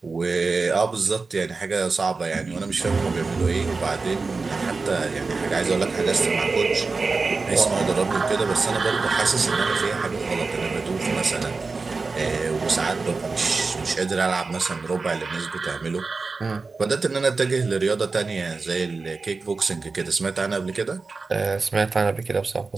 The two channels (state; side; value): quieter; left; 4.1 dB